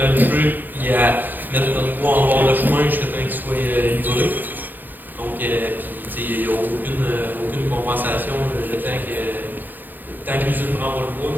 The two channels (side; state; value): left; late; 0.088 ms